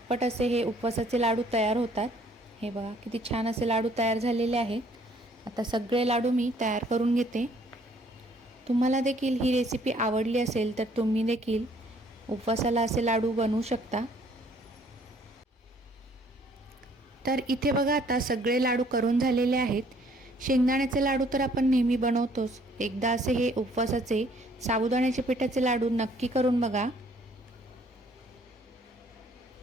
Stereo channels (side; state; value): both; normal; correlation 0.61